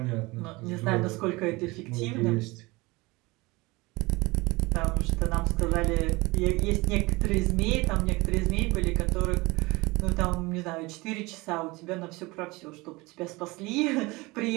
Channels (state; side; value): quieter; left; 23.1 dB